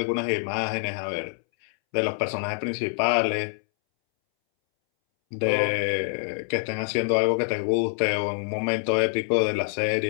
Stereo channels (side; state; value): right; silent; 61 dB below the other